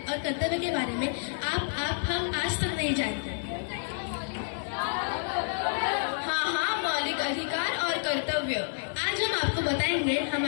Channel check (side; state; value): right; silent; 58 dB below the other